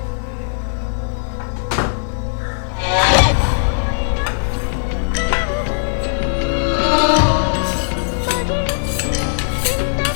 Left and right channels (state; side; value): silent; right; 67 dB below the other